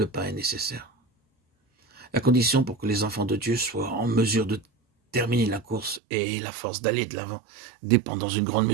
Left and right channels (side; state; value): left; drops out; at 6.0 s